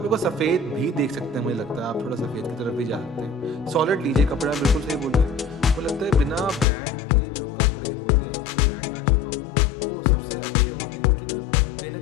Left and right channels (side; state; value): right; drops out; at 6.7 s